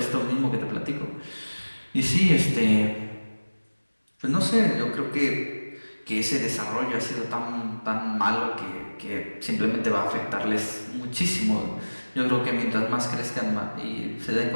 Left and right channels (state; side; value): inverted; both; correlation -1.00